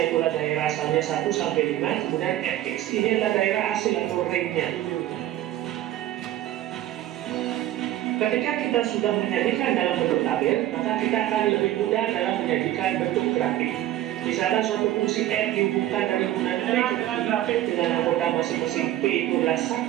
itulah daerah asalnya 1 sampai 5, kemudian Fx ini adalah daerah hasil atau range-nya. Ketika kita sudah menjadikan dalam bentuk tabel, maka kita akan lebih mudah dalam menjadikan bentuk grafik. Misalkan suatu fungsi f dihubungkan dari hubungan p dengan anggota masing-masing p itu adalah 1,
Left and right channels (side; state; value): left; quieter; 13.6 dB